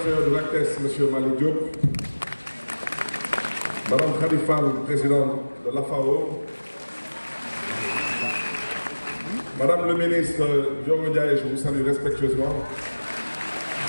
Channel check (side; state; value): both; inverted; correlation -1.00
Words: de l'ACTES, Monsieur Malik Diop, Madame Khalifal, présidente de l'AFAO, Madame le ministre Diogo Ndiaye, je vous salue respectueusement.